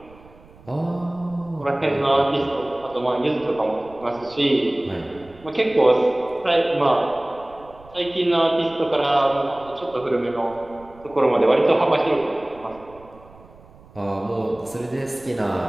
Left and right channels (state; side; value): noise; right; rumble, 24 dB below the sound